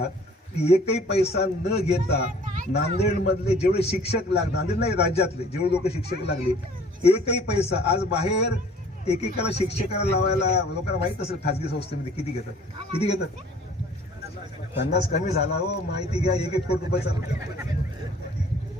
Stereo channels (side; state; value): both; normal; correlation 0.53